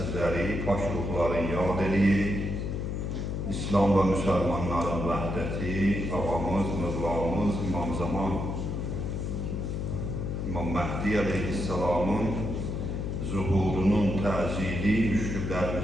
paş ruhları yad eləyik. İslam və müsəlmanların vəhdəti, ağamız, mövlamız, İmam Zaman, İmam Məhdi Aleyhisselamın zuhurunun təzili,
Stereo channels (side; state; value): left; noise; hum, 2 dB below the sound